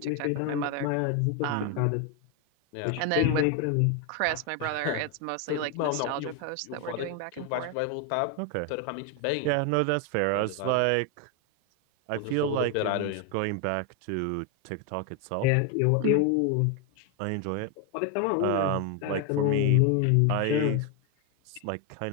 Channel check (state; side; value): different; both; correlation 0.01